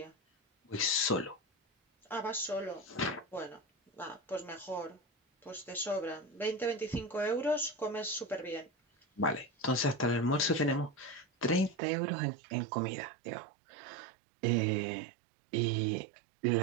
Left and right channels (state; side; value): drops out; left; at 11.8 s